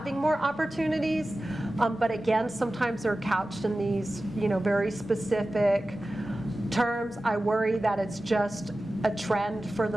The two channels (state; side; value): normal; both; correlation 0.95